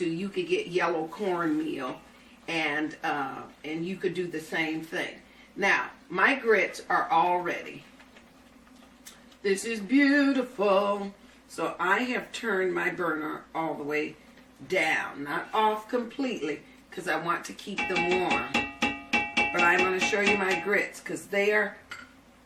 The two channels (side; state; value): both; identical; correlation 1.00